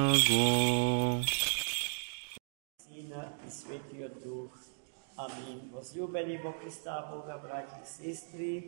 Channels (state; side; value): silent; left; digital silence